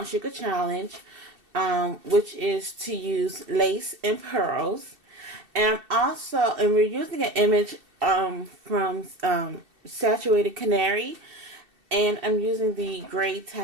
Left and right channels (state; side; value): late; left; 2.7 ms